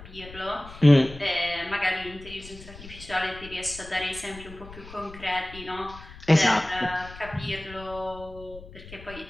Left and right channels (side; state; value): left; noise; rumble, 16 dB below the sound